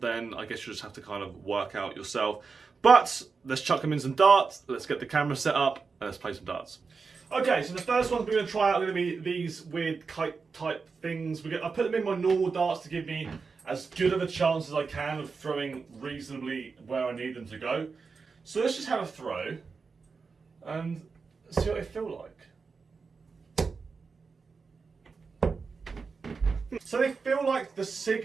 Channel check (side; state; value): left; quieter; 4.9 dB